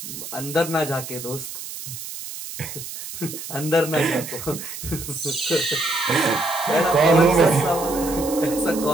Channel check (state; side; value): noise; right; hiss, 10 dB below the sound